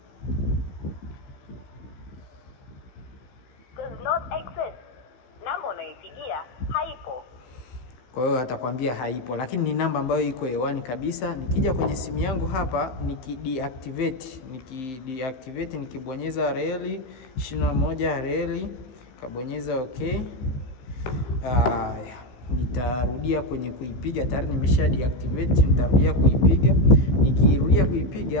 does not exist. Namba unaipigia haipo. Kwa hiyo atakwambia haipo, lakini ni namba ambayo iko hewani kabisa. Nikija kwenye simu yangu hapa nikideactivate, nikibonyeza reli 21 reli, kabonyeza okay. Nitarudia kwenye kuipiga, tayari nimesha deactivate. Nitarudia kuipiga. Nikirudia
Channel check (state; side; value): late; right; 15 ms